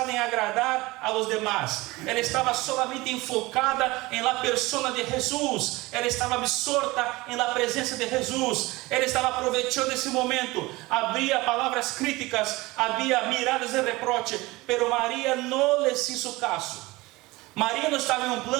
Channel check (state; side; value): quieter; left; 21.3 dB